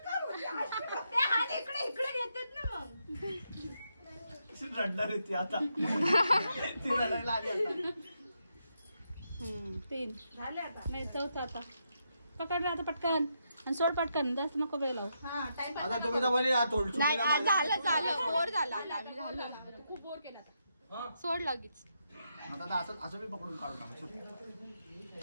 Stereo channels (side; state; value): both; inverted; correlation -0.81